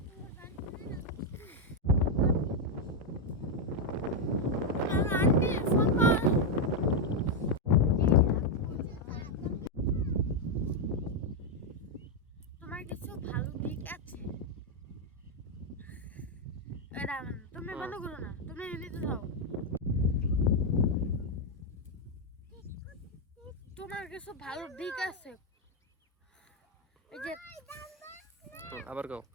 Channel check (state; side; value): normal; both; correlation 0.02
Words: আমার আন্টি ফোন কর। তোমার কিছু ভালো দিক আছে এটা তুমি বন্ধ করো না, তুমি এমনিতে যাও। তোমার কিছু ভালো দিক আছে এই যে আবার গাও।